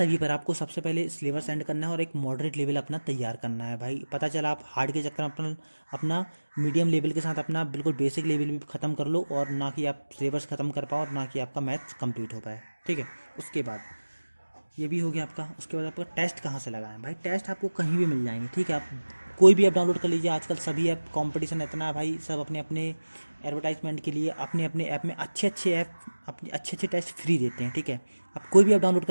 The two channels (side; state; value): both; inverted; correlation -1.00